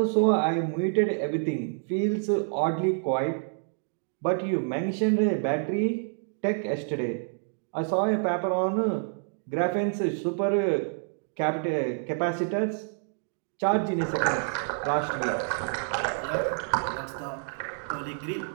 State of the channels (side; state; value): left; silent; digital silence